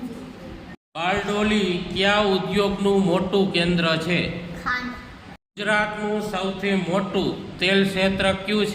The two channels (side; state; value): both; identical; correlation 1.00